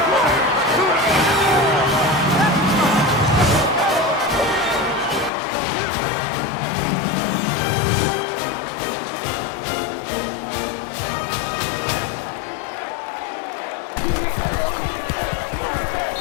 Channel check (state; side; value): drops out; right; at 5.3 s